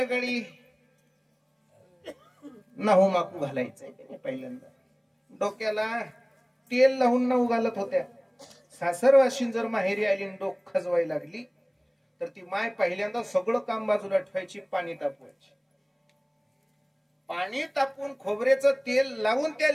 काळी? नाहू माकू घालायचंय पहिल्यांदा, डोक्याला तेल लावून नाहू घालत होत्या. सासरवाशीन जर माहेरी आली डोक खजवायला लागली तर ती माय पहिल्यांदा सगळं काम बाजूला ठेवायची, पाणी तापवायची. पाणी तापून खोबऱ्याचं तेल लावून त्या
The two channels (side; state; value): both; identical; correlation 1.00